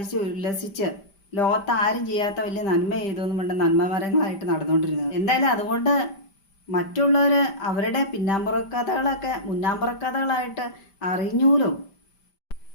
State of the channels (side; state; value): right; late; 5.1 ms